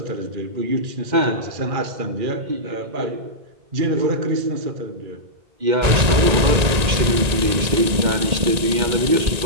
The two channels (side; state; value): left; late; 1.9 ms